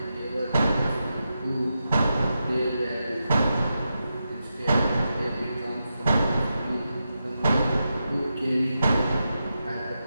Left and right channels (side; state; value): both; inverted; correlation -0.88